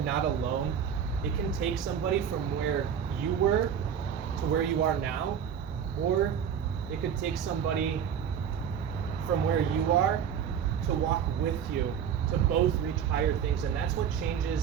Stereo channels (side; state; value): left; quieter; 8.2 dB